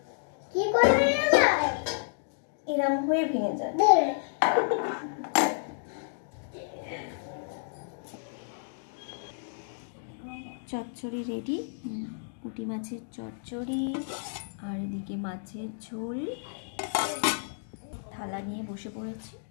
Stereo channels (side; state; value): right; silent; digital silence